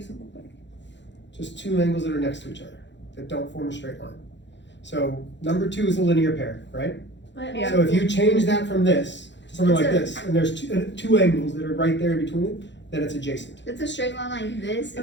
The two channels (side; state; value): right; late; 0.52 ms